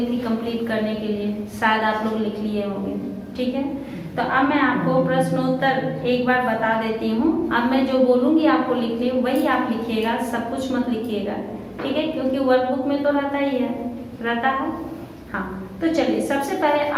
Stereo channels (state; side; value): identical; both; correlation 1.00